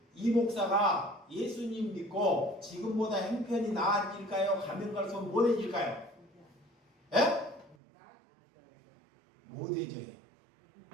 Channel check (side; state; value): left; drops out; at 7.8 s